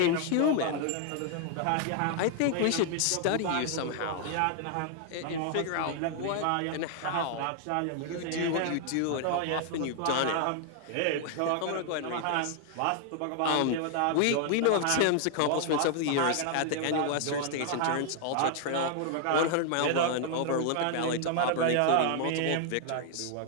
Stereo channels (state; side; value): different; both; correlation 0.00